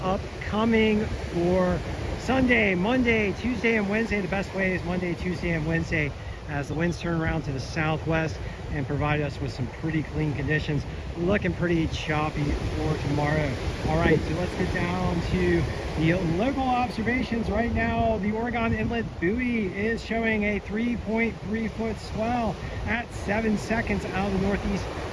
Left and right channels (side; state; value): both; identical; correlation 1.00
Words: upcoming for Sunday, Monday, Tuesday, and Wednesday. The best waves Monday, Tuesday, and Wednesday as the winds turn around to the southwest and provide us with some pretty clean conditions. Looking pretty choppy for tomorrow. All right, so let's get down to the local observations. Right now, the Oregon Inlet buoy is showing a 3.3-foot swell at 7 seconds out of the northeast